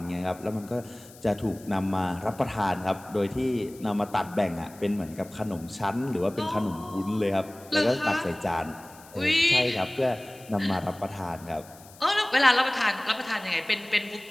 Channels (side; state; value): left; noise; hiss, 22 dB below the sound